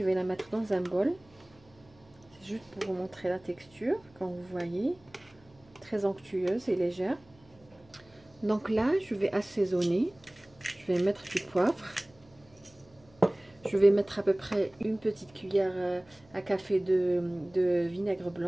vais la mettre dans un bol. C'est juste pour vous montrer la texture, quand vous voyez, très onctueuse et légère. Donc là, je vais assaisonner. Je vais mettre du poivre. Je vais mettre à peu près une petite cuillère à café de vinaigre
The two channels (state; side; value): noise; right; hum, 29 dB below the sound